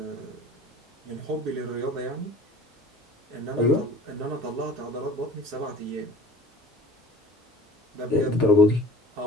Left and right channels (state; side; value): normal; both; correlation 0.44